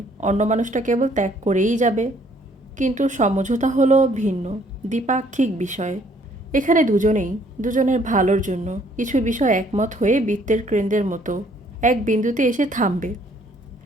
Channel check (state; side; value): normal; both; correlation 0.63